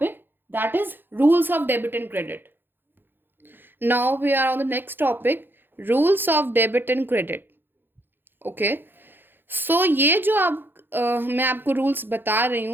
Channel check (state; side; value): late; left; 0.099 ms